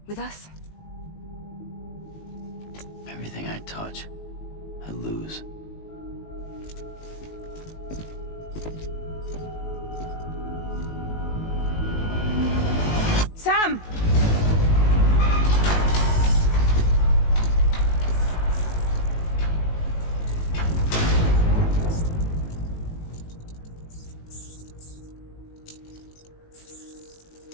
With us. Everything I touch, I lose. Sam!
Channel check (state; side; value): late; right; 19 ms